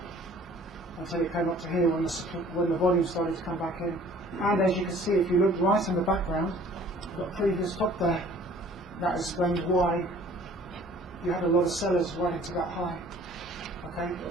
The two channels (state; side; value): normal; both; correlation 0.52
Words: until it came up to here when the volume started to come back in. And as you can see, if you look right in the background, you've got a previous top there. That explains why you had a lot of sellers right into that high. Okay,